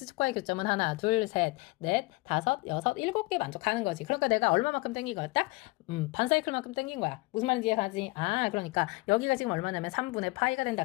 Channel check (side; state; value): right; quieter; 23.8 dB